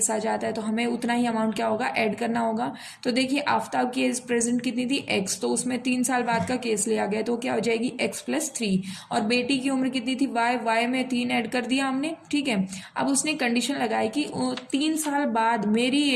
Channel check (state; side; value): identical; both; correlation 1.00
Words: आ जाता है तो हमें उतना ही अमाउंट क्या होगा, ऐड करना होगा। तो देखिए आफ्ताब की एज प्रेजेंट कितनी थी, x, तो उसमें 3 साल बाद का केस लिया गया तो क्या हो जाएगी, x + 3। और बेटी की उम्र कितनी थी, y में 3 ऐड कर दिया हमने। ठीक है, अब उसने कंडीशन लगाई कि 3 साल बाद मेरी